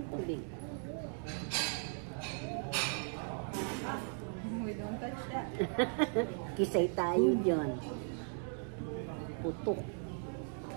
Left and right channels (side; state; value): left; silent; 53 dB below the other